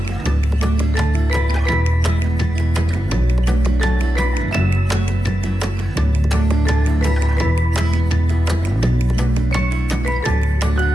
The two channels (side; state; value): both; normal; correlation 0.90